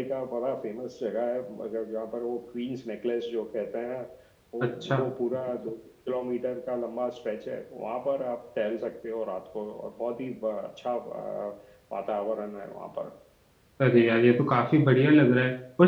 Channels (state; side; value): identical; both; correlation 1.00